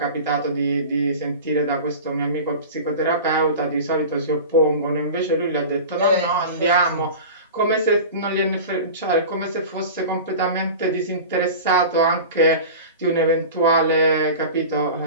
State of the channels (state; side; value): inverted; both; correlation -0.33